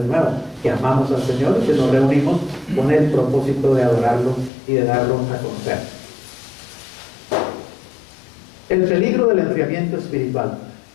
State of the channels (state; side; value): drops out; right; at 4.5 s